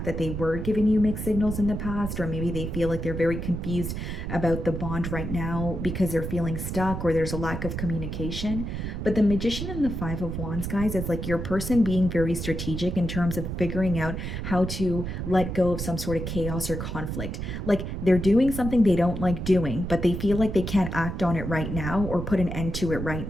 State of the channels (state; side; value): noise; right; rumble, 5 dB below the sound